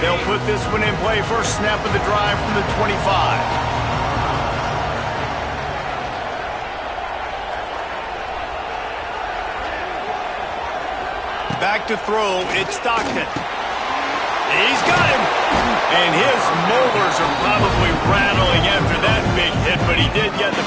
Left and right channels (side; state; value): both; identical; correlation 1.00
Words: put this one in play. First snap of the drive from the 25. Back to throw. It's Stockton. He's got him. And his molars are probably rattling after that big hit, but he did get the